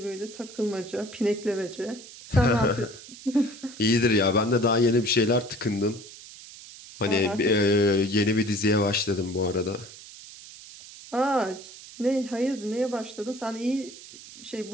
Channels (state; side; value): noise; right; hiss, 17 dB below the sound